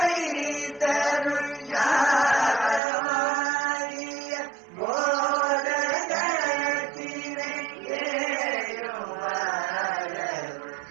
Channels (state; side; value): drops out; left; at 2.8 s